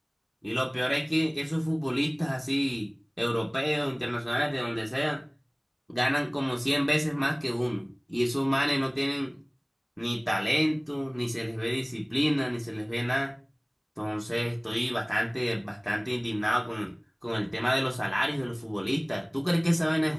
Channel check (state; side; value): identical; both; correlation 1.00